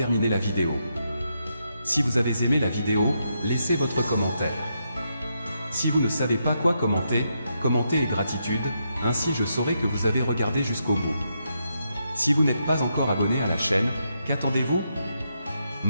la vidéo. Si vous avez aimé la vidéo, laissez votre commentaire. Si vous ne savez pas quoi commenter, commentez et gratitude, ainsi je saurai que vous avez regardé jusqu'au bout. Si vous n'êtes pas encore abonné à la chaîne, qu'attendez-vous?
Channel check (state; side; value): inverted; both; correlation -0.81